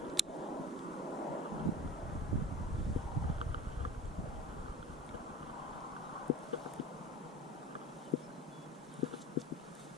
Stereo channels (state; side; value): normal; both; correlation 0.37